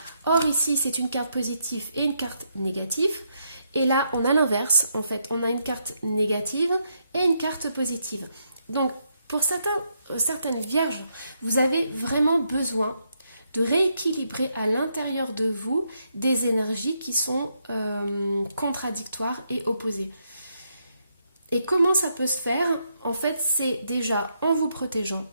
Or ici, c'est une carte positive et une carte négative, et là, on a l'inverse. En fait, on a une carte négative et une carte positive. Donc, pour certaines vierges, vous avez vraiment besoin de rééquilibrer à l'intérieur de vous des énergies qui sont contradictoires et opposées. Et comment ça peut se faire? En fait, c'est déjà en vous protégeant,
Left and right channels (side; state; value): both; inverted; correlation -0.78